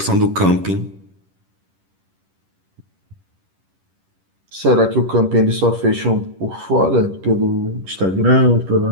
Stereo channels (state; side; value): late; left; 10 ms